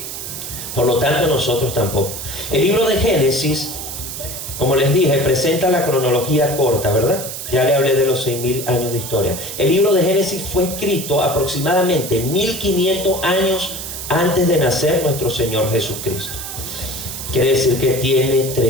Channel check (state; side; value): noise; right; hiss, 8 dB below the sound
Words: Por lo tanto, nosotros tampoco. El libro de Génesis, como les dije, presenta la cronología corta, ¿verdad? Ya le hablé de los 6.000 años de historia. El libro de Génesis fue escrito aproximadamente 1.500 años antes de nacer nuestro Señor Jesucristo. Quiere decir que tiene